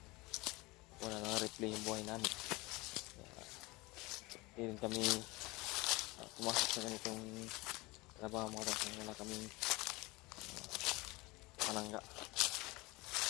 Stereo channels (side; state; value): right; quieter; 23.1 dB